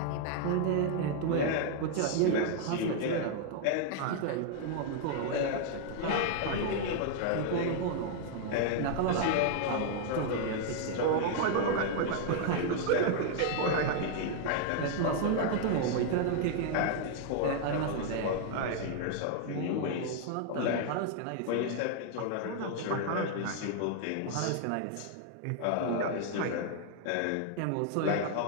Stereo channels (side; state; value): both; different; correlation 0.00